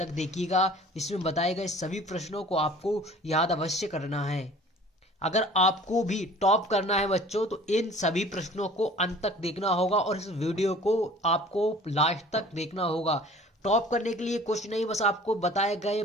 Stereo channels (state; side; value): normal; both; correlation 0.48